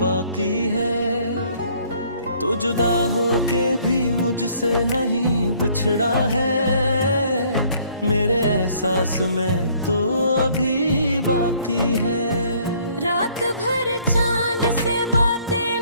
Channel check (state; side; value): inverted; both; correlation -0.61